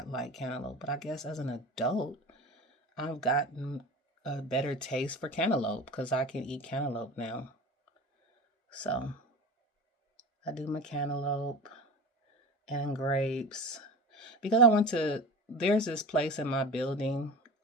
like cantaloupe. But I guess as an adult, I've gotten a better taste for cantaloupe because I can eat cantaloupe now. So I do my cantaloupe and grapes because there's this place in my building.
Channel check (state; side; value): normal; both; correlation 0.32